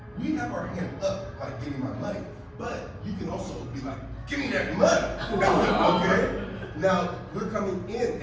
we have our hand up, like getting my money. But you can also be like, give me that money. Okay? Now, we're coming in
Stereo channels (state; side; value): identical; both; correlation 1.00